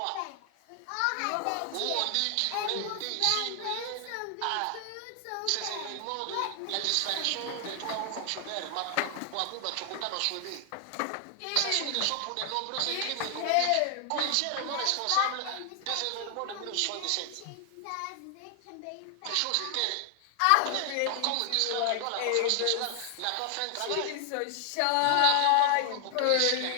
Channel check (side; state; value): both; different; correlation 0.00